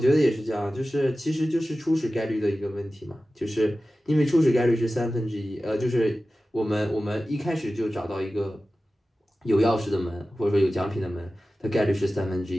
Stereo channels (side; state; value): both; normal; correlation 0.95